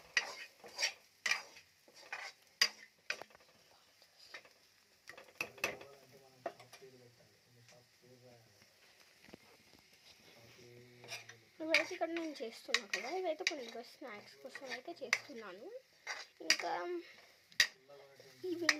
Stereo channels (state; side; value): identical; both; correlation 1.00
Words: ఇవైతే ఇక్కడ నేను చేస్తున్నాను కదా, ఇవైతే కొన్ని స్నాక్స్ కోసం అయితే చేస్తున్నాను. ఇంకా